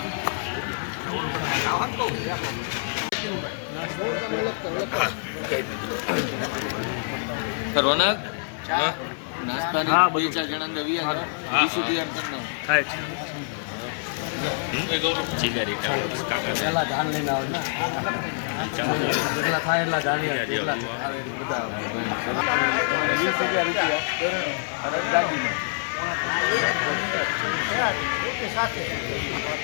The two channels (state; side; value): silent; right; 61 dB below the other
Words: રોનક નાસ્તાની 2-4 જણા નવી ડીશું તૈયાર કરના પેલા ધાન લઈને આવે ને જેટલા થાય એટલા ધાન જેટલા આવે બધા 20,000 રૂપિયા અને દાગીનો